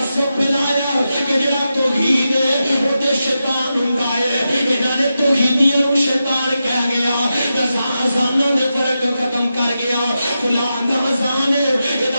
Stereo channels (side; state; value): both; inverted; correlation -0.89